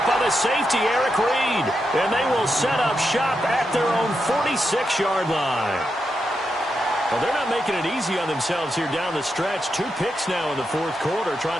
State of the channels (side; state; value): both; normal; correlation 0.85